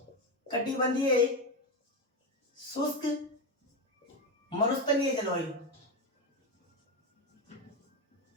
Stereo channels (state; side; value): normal; both; correlation 0.12